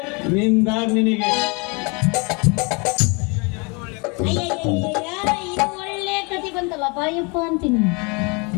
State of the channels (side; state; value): right; quieter; 30.9 dB